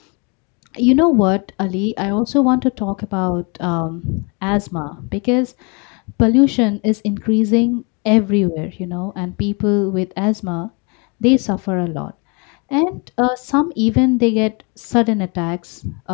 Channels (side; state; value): right; quieter; 31.8 dB